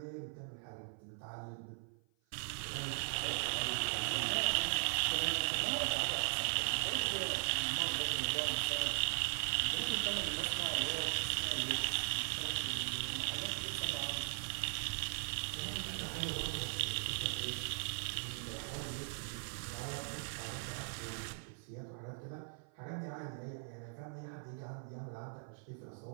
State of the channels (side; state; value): left; silent; 52 dB below the other